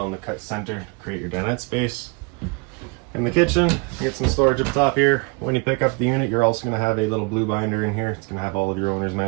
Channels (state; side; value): quieter; left; 31.1 dB